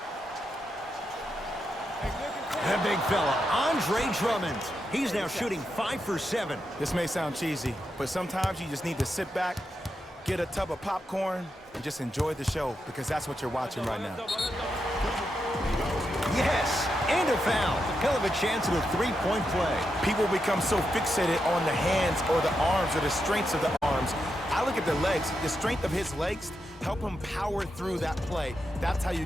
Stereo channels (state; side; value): normal; both; correlation 0.85